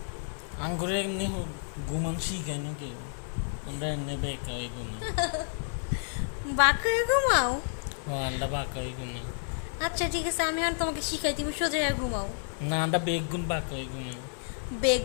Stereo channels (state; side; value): silent; right; 58 dB below the other